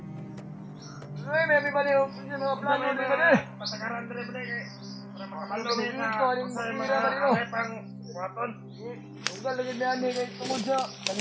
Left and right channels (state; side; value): identical; both; correlation 1.00